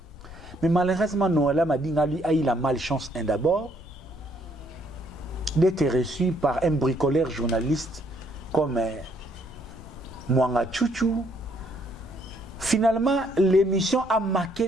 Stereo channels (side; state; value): left; noise; rumble, 17 dB below the sound